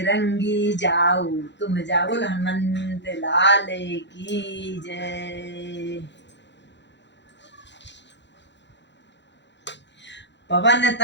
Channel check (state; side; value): late; right; 0.52 ms